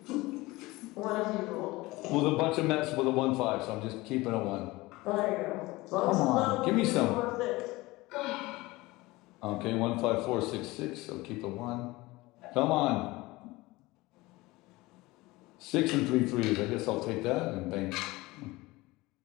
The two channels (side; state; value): right; quieter; 20.8 dB